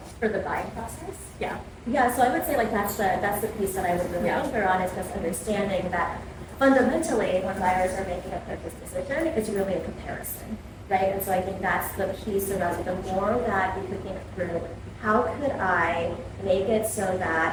For the buying process? Yeah. Yeah, so I would say like that's the piece that I would really anchor on is just understanding that fundamentally when buyers are making a purchase decision, it's really a comparison, right? And so I think that's the piece around the more that you could think through, how could I make it so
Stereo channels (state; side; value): identical; both; correlation 1.00